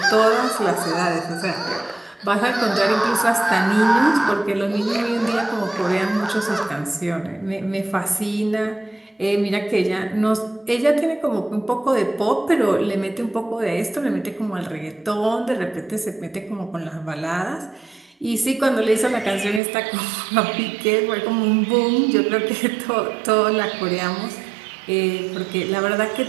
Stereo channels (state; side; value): drops out; left; at 19.6 s